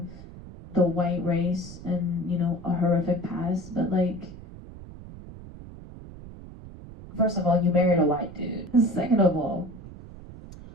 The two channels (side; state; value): right; noise; rumble, 15 dB below the sound